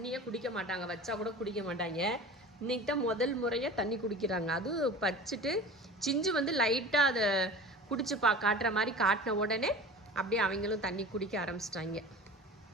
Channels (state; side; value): normal; both; correlation 0.37